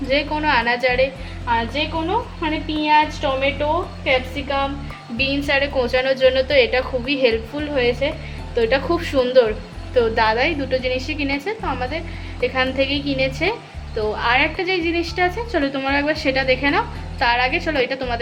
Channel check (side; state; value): both; identical; correlation 1.00